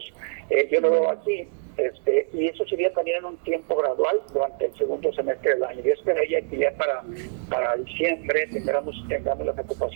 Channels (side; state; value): left; silent; digital silence